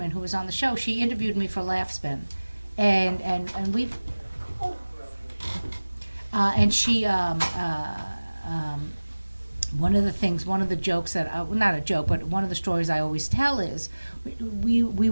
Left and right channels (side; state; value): both; inverted; correlation -1.00